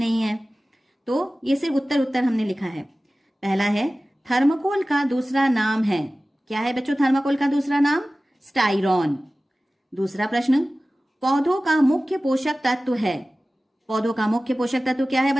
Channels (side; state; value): both; normal; correlation 0.97